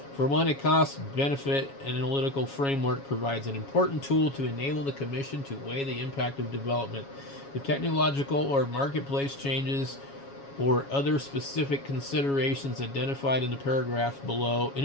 For one, a cost-benefit analytical framework provides an important tool to enable the Commission to weigh the impact of development, the technological or marketplace changes, or other specific considerations identified in the paragraph below. In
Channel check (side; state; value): right; late; 7.2 ms